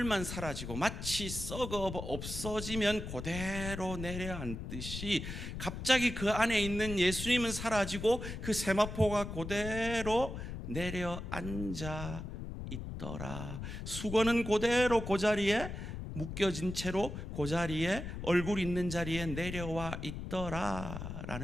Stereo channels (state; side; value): noise; left; rumble, 7 dB below the sound